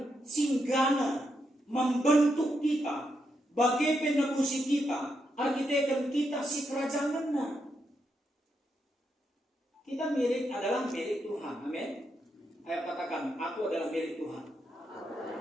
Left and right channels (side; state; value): both; normal; correlation 0.81